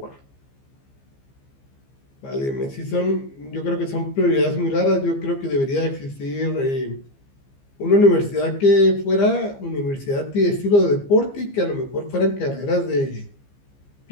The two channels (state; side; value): late; right; 15 ms